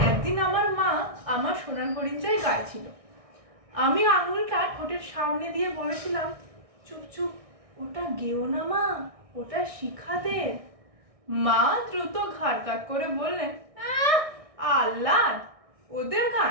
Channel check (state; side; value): late; left; 1.6 ms